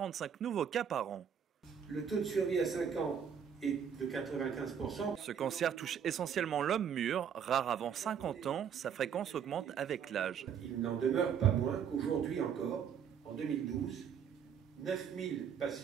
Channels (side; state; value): left; quieter; 7.8 dB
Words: nouveaux cas par an. Le taux de survie à 5 ans est de 95%. Ce cancer touche essentiellement l'homme mûr, rare avant 50 ans, sa fréquence augmente avec l'âge. Il n'en demeure pas moins qu'aujourd'hui encore, en 2012, 9000